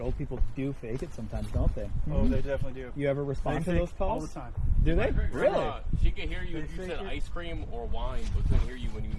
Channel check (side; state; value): both; identical; correlation 1.00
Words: old people do fake it sometimes, don't they? Oh, they definitely do. You ever respond to They those fake calls? all the time. Do they? Really? Grandma, she could hear you if you They said fake it. ice cream or wine, but couldn't hear you when you